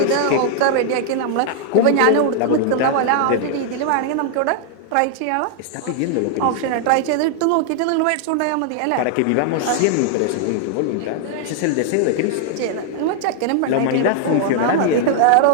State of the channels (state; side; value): different; both; correlation 0.00